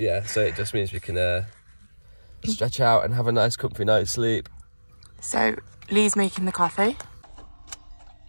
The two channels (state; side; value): inverted; both; correlation -1.00